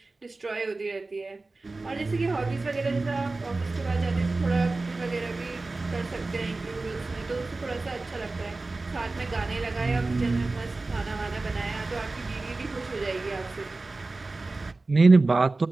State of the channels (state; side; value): quieter; left; 3.4 dB